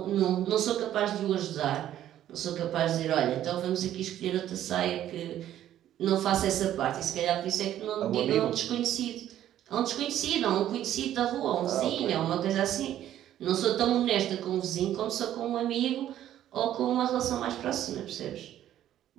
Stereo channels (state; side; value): quieter; left; 11.9 dB